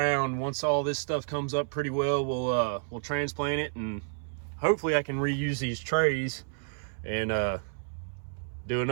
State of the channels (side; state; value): left; silent; 58 dB below the other